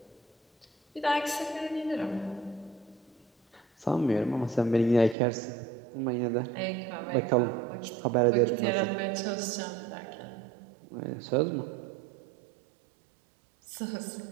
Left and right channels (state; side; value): drops out; left; at 5.2 s